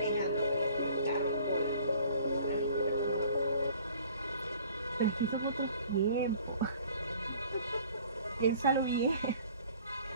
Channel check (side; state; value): both; inverted; correlation -0.51